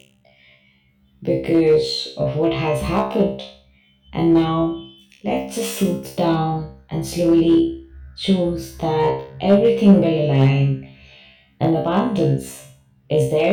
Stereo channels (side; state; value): both; identical; correlation 1.00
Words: because of what has happened. And now Let's just soothe down and slowly choose that everything will align and abundance is